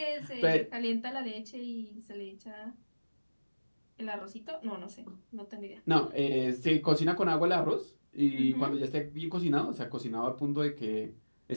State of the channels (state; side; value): inverted; both; correlation -1.00